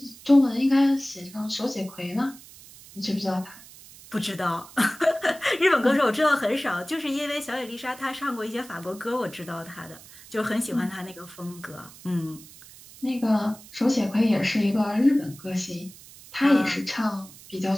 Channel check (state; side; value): noise; right; hiss, 20 dB below the sound